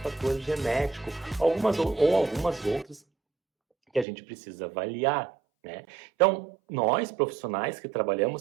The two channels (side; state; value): left; drops out; at 4.0 s